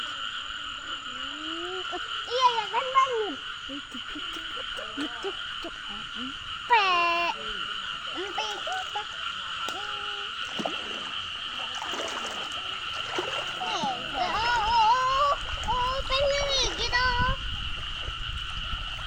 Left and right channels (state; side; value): identical; both; correlation 1.00